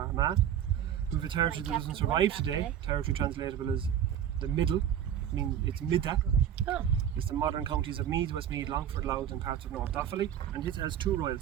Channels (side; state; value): left; quieter; 9.7 dB